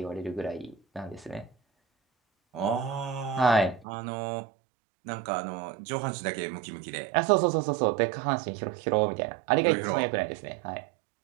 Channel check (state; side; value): drops out; left; at 3.9 s